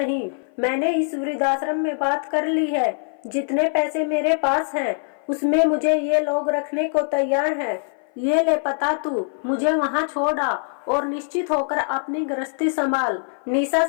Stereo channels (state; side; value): silent; right; 56 dB below the other